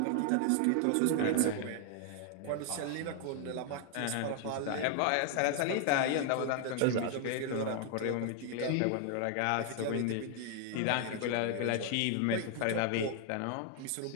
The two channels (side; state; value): both; different; correlation 0.00